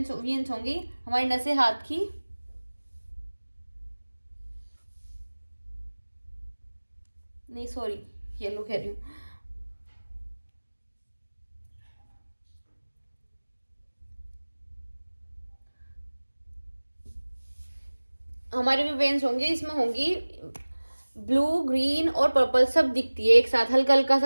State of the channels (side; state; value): both; inverted; correlation -1.00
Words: होंगी हमारी नसें हाथ की, नहीं सॉरी येलो कह रही हूँ, हमारे भी वेन्स होंगी, इसमें होंगी ब्लू, ग्रीन और पर्पल सब दिखती है एक साथ, हल्का हल्का